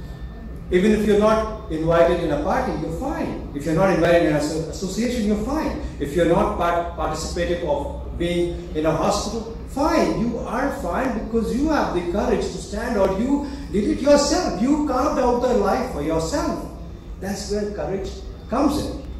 Even if you're not invited in a party, you're fine. If you're not invited in an association, you're fine. If you're not participative of being in a hospital, fine. You are fine because you have the courage to stand out. You did it yourself. You carved out the life for yourself. That's where courage comes in.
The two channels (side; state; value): both; identical; correlation 1.00